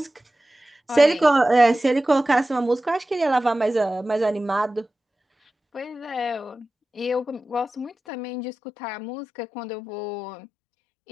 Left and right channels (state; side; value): drops out; right; at 7.9 s